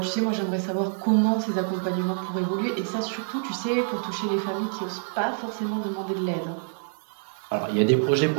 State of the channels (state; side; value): silent; left; digital silence